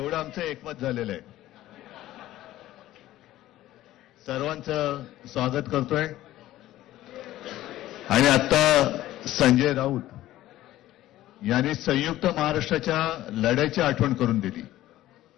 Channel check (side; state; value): right; quieter; 14.8 dB